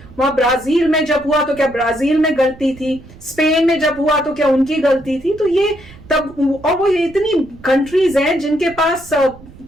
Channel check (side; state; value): right; noise; rumble, 21 dB below the sound